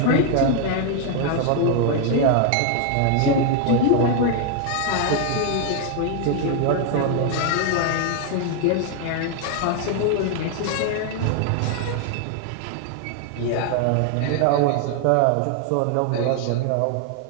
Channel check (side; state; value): both; different; correlation 0.00